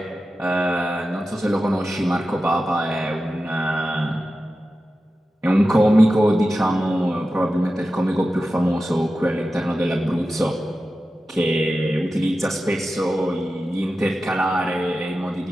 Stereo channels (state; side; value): normal; both; correlation 0.93